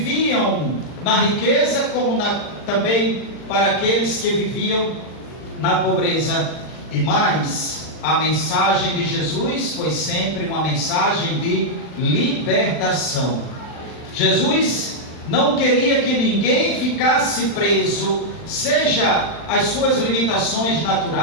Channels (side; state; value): right; late; 40 ms